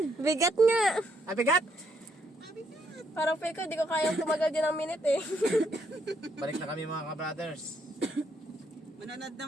Bigat nga. Ay, bigat! Parang feel ko, di ko kayang tumagal din ng minute eh. Balik na kami mga ka-brothers. Manonood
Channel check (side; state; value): both; normal; correlation 0.72